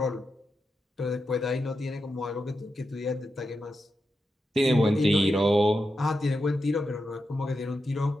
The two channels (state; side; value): normal; both; correlation 0.88